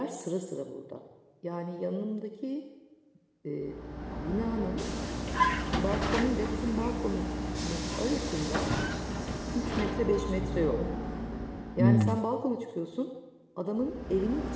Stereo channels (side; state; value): both; identical; correlation 1.00